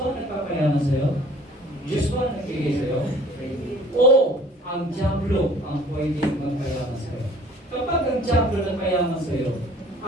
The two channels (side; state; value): both; normal; correlation 0.52